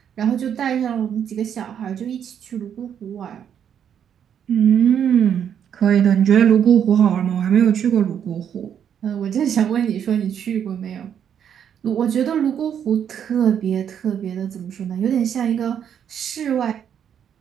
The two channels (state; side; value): quieter; left; 8.7 dB